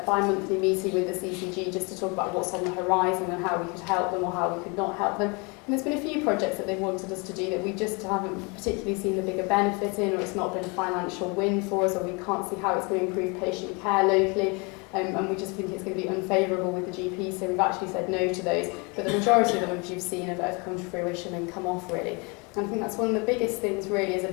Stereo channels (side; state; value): right; quieter; 30.3 dB